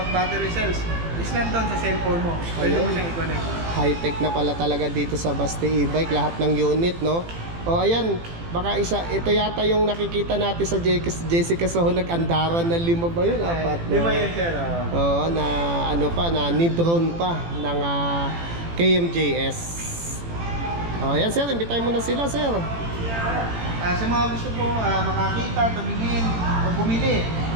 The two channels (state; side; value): late; left; 18 ms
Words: battery cells is nandun sa cellphone mo. Pwede mo Ayun. siyang i-connect. High-tech na pala talaga dito sa Baste e-bike, lahat ng unit, no? O ayan, baka ito yata yung nakikita natin sa Jessica Soho, nag-andaran na 5 ba yun? 4 Di ba yun sir? Oo, na ni-drone pa ng KMJS. O ayan sir, imbitahin mo na sila, sir. Sa mga gusto po makakita, tumingin, o bumili